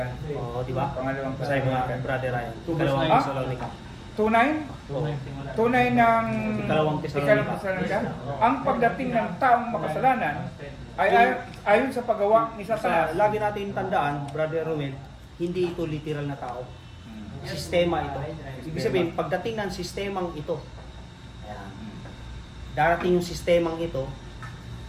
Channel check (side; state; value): both; identical; correlation 1.00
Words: Oo, di ba? Pangalawang Sa mga Thessalonica. brother Ryan. 2 verse Ikalawang 9. Tesalonica. Tunay? Tunay ng Ikalawang Thessalonica. Thessalonica. Ang pagdating ng taong makasalanan ay ayon sa paggawa ni Satanas. Lagi natin tandaan, Brother Ruel, hindi ito literal na tao. Sistema ito. Ibig sabihin, pagdating ng sistemang ito, ayan, darating yung sistemang ito,